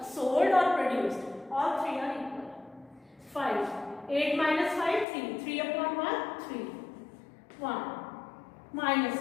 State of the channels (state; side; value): drops out; right; at 5.1 s